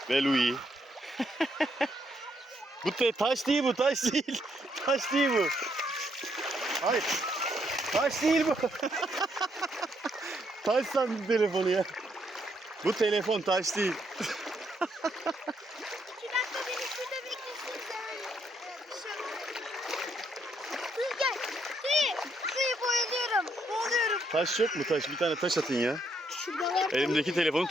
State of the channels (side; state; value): both; normal; correlation 0.74